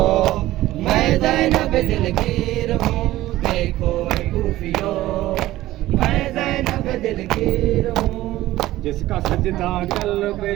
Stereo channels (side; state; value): left; quieter; 15.9 dB